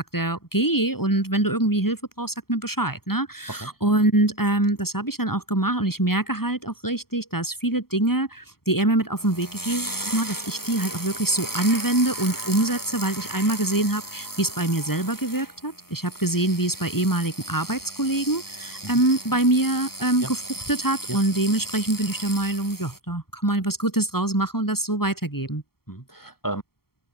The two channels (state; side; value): late; right; 0.94 ms